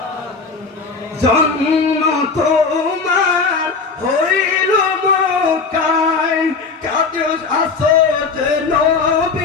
জন্ম তোমার হইল মক্কায় কাজ আসত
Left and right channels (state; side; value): quieter; right; 4.6 dB